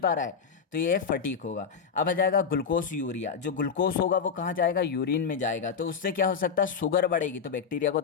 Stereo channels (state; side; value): quieter; right; 6.3 dB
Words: रहा है, तो ये फटीक होगा। अब आ जाएगा ग्लूकोज यूरिया, जो ग्लूकोज होगा वो कहाँ जाएगा, यूरिन में जाएगा, तो उससे क्या हो सकता है, शुगर बढ़ेगी, तो बैक्टीरिया को